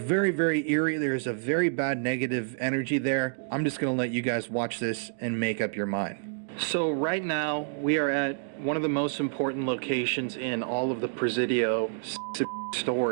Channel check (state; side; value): silent; left; digital silence